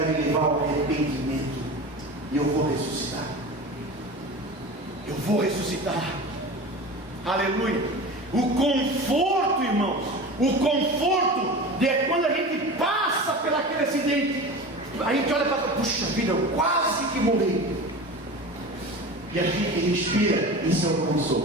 me levar ao arrependimento, e eu vou ressuscitar. Eu vou ressuscitar. Aleluia. O conforto, irmãos, o conforto é quando a gente passa por aquele acidente, a gente olha para trás, puxa vida, eu quase que morri, e a gente respira. Isso é o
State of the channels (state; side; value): normal; both; correlation 0.32